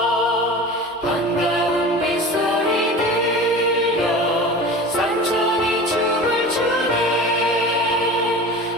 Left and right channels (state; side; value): normal; both; correlation 0.35